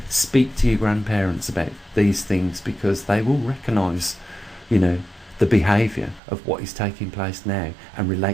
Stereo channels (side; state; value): left; drops out; at 6.2 s